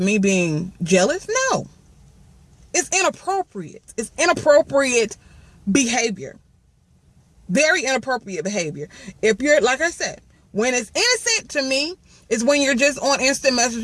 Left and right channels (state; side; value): identical; both; correlation 1.00